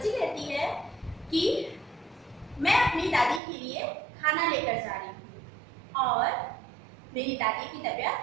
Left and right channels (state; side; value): drops out; left; at 3.4 s